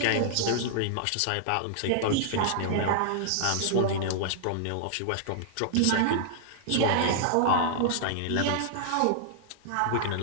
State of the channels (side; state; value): both; different; correlation -0.01